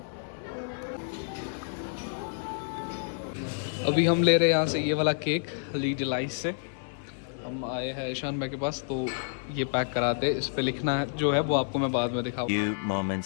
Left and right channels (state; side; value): silent; right; digital silence